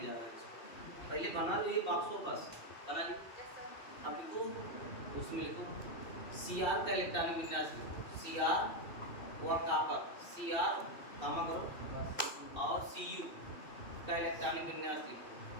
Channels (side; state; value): right; late; 2.6 ms